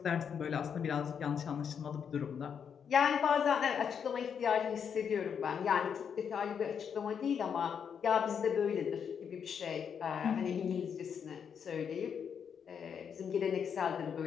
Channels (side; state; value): right; quieter; 7.3 dB